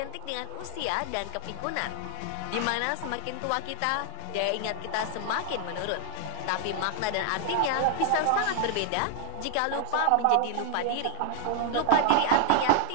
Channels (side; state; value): both; different; correlation 0.00